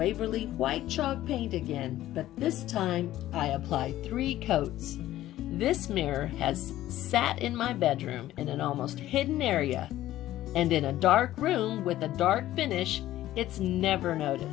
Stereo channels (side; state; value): right; quieter; 14.2 dB